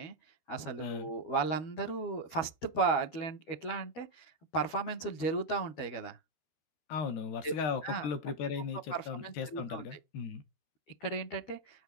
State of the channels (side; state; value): right; late; 12 ms